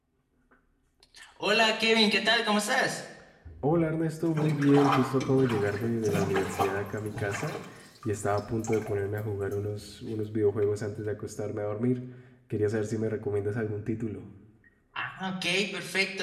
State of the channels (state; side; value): identical; both; correlation 1.00